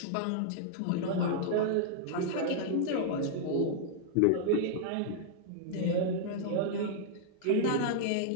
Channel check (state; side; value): different; both; correlation -0.01